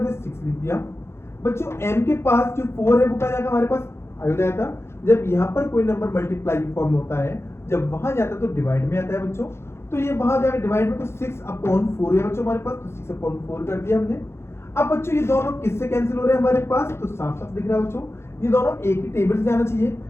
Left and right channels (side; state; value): right; late; 0.12 ms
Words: 6 लिख दिया बच्चों। m के पास जो 4 है वो क्या जाएगा हमारे पास, आ जाता। जब यहाँ पर कोई नंबर मल्टीप्लाई फॉर्म में होता है, जब वहां जाता है तो डिवाइड में आता है बच्चों, तो ये वहां जाएगा डिवाइड में, तो 6/4 है बच्चों हमारे पास, तो 6/4 कर दिया हमने। अब बच्चों ये दोनों किससे कैंसिल हो रहे हैं हमारे पास, तो साफ साफ दिख रहा है बच्चों, ये दोनों एक ही टेबल से जाना चाहिए।